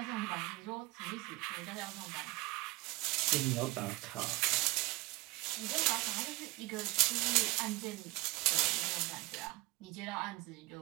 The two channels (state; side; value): quieter; left; 22.8 dB